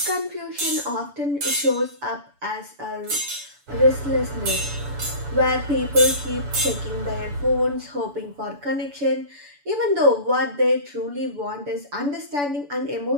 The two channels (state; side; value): late; left; 7.0 ms